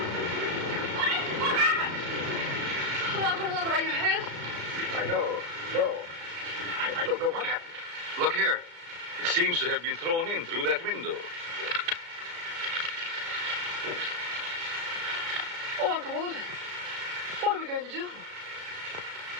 What happened? Oh, Uncle Walter, are you hurt? I know. No. I don't know what happened. Look here. It seems to have been thrown in through that window. Oh, Uncle Walter, what are we going to do?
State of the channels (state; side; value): late; left; 34 ms